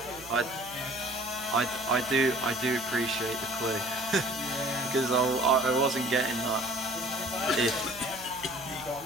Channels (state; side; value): noise; right; hum, 19 dB below the sound